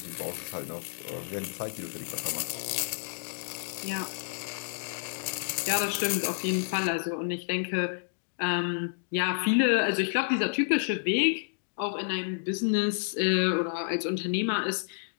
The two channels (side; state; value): right; silent; digital silence